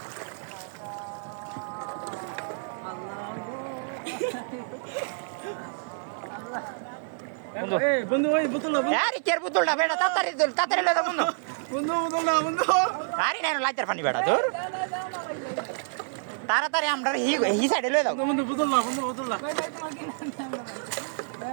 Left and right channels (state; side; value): silent; left; 59 dB below the other